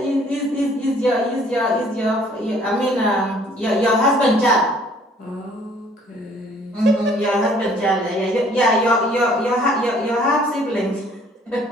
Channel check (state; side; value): normal; both; correlation 0.58